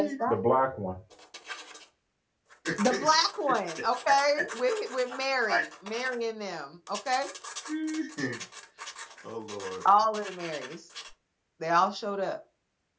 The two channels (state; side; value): identical; both; correlation 1.00